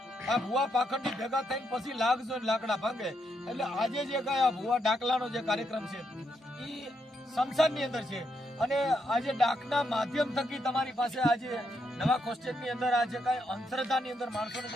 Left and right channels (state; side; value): normal; both; correlation 0.79